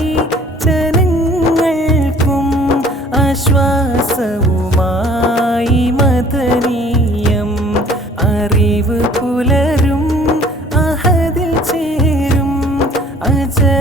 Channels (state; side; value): normal; both; correlation 0.53